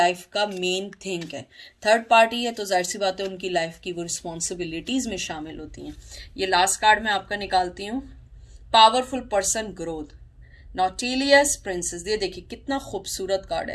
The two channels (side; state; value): both; identical; correlation 1.00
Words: का मेन थिंग है। थर्ड पार्टी है तो जाहिर सी बात है उनकी लाइफ की वो रिस्पॉन्सिबिलिटीज में शामिल होती हैं। ये लास्ट कार्ड मैं आपका निकालती हूँ, पावरफुल पर्सन ग्रोथ, नॉटिलियस प्रिंसेस। ये देखिए कितना खूबसूरत कार्ड